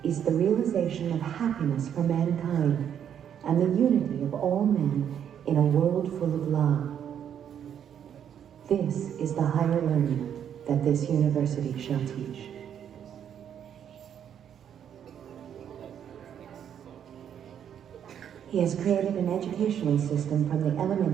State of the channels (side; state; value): left; quieter; 9.0 dB